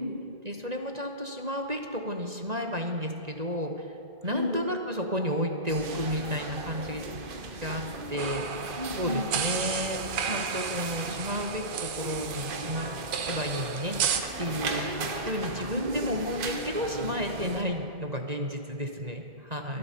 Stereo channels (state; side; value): late; left; 2.4 ms